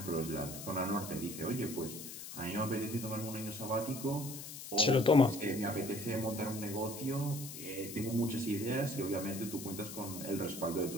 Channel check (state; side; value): noise; left; hiss, 10 dB below the sound